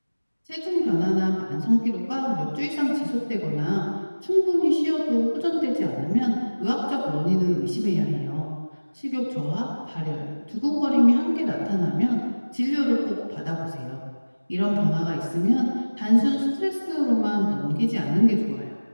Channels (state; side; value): inverted; both; correlation -1.00